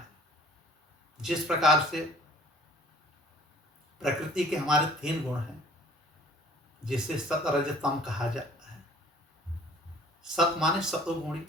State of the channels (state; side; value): normal; both; correlation 0.52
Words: जिस प्रकार से प्रकृति के हमारे 3 गुण हैं, जिसे सत, रज, तम कहा जाता है। सत माने सतोगुणी,